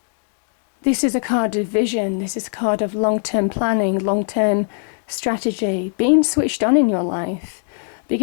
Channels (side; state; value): right; silent; digital silence